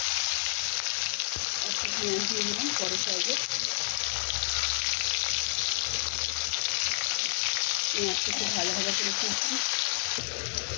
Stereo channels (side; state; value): right; silent; digital silence